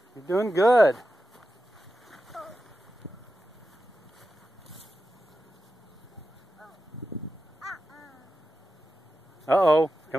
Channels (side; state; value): both; normal; correlation 0.91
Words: You're doing good. Uh-oh.